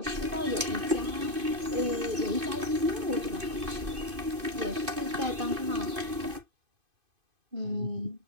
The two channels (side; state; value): left; late; 2.5 ms